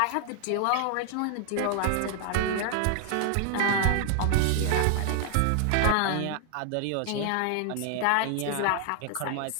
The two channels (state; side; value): different; both; correlation 0.00